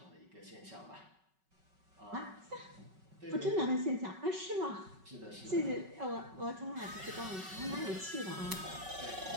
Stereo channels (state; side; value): late; left; 5.3 ms